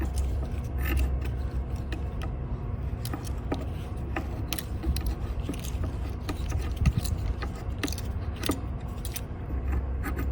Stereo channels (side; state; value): both; identical; correlation 1.00